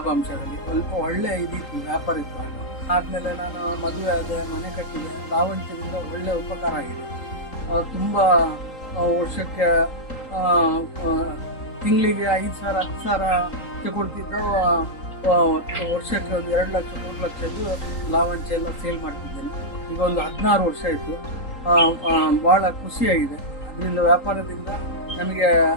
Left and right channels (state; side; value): late; right; 3.8 ms